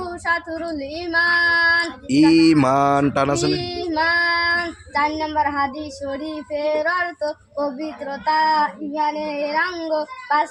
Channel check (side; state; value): both; identical; correlation 1.00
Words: শাতরুল ঈমান, ঈমান টানাসনে ঈমান। চার নম্বর হাদিস শরীফের অর্থ পবিত্রতা ঈমানের অঙ্গ। পাঁচ